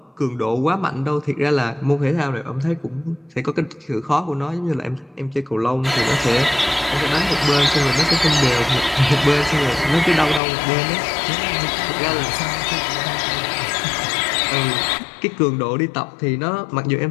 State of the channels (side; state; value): right; drops out; at 10.4 s